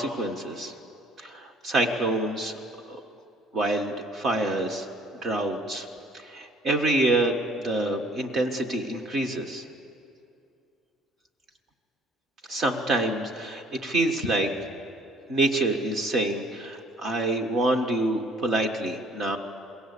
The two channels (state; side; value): normal; both; correlation 0.57